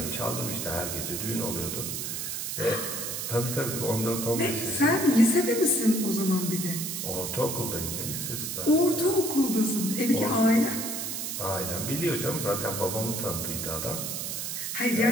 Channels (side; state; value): right; noise; hiss, 4 dB below the sound